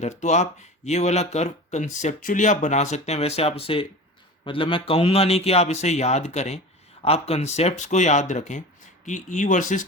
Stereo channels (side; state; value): both; normal; correlation 0.33